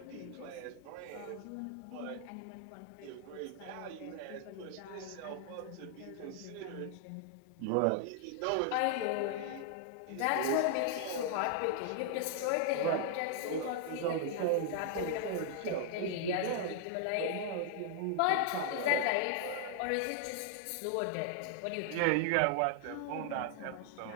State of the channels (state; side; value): different; both; correlation 0.00